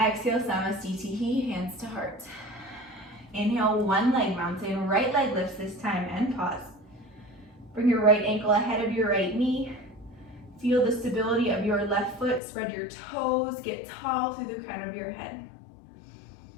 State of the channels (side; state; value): right; drops out; at 12.4 s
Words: Exhale, Samasthiti, hands to heart. Inhale, one leg mountain. Right leg lifts this time and pause. Bring your right ankle ahead of your right knee. Feel the stability of your left foot. Spread your toes. Get tall through the crown of your head.